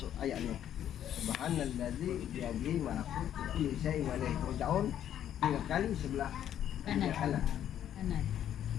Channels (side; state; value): right; quieter; 10.5 dB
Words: ayat ini, Subhanallazi biyadihi malakutu kulli syai'in wa ilaihi turja'un, 3 kali sebelah kanan.